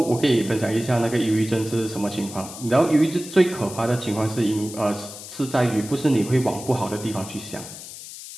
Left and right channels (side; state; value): left; noise; hiss, 13 dB below the sound